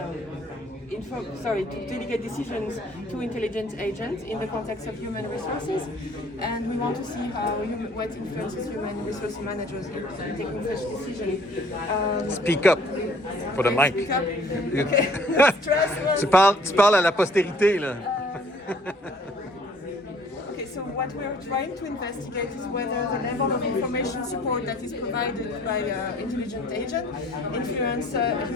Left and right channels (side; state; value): both; normal; correlation 0.56